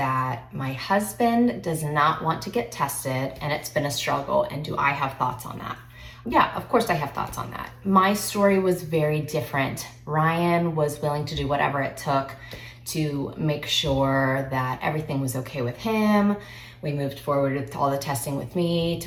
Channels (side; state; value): both; identical; correlation 1.00